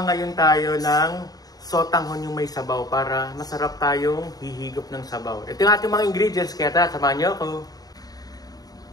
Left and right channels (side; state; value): right; late; 0.18 ms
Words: ngayon tayo ng sotanghon yung may sabaw para masarap tayong hihigop ng sabaw. Ito yung ating mga ingredients, kaya samahan niyo ako.